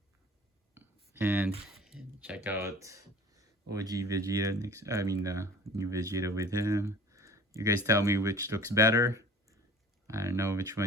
and check out OG Vegeta next. I mean, the new Vegeta with him. You guys tell me which looks better. I don't know which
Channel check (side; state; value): both; normal; correlation 0.45